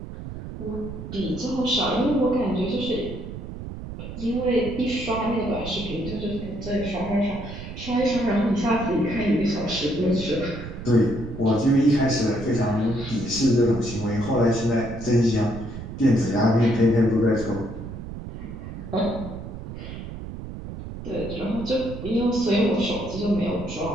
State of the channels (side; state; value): right; noise; rumble, 10 dB below the sound